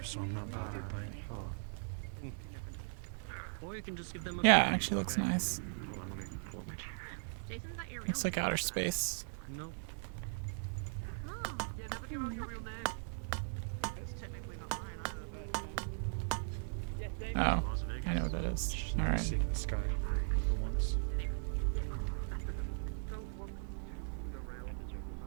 so I'm not bothered by it. Or you can just give them a Yeah, actually looks nice. Jason's not your real Looks like outer space. No. Yeah, never give out your real name. It's technically not mine either, but... Oh, I know what that is. Alright. Seeing the sky for once.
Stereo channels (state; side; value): silent; left; 52 dB below the other